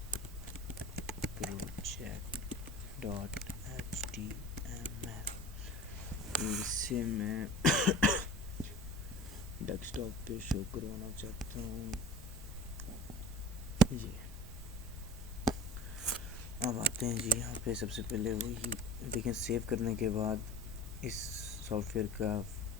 प्रोजेक्ट .html, इसे मैं डेस्कटॉप पे शो करवाना चाहता हूँ ये। अब आते हैं जी यहाँ पे। सबसे पहले वही देखें, सेव करने के बाद इस सॉफ्टवेयर का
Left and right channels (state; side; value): normal; both; correlation 0.38